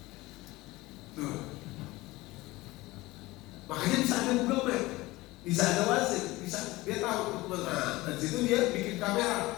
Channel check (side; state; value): right; quieter; 20.0 dB